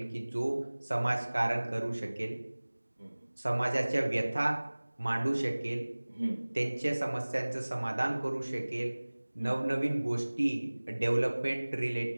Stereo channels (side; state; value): both; inverted; correlation -1.00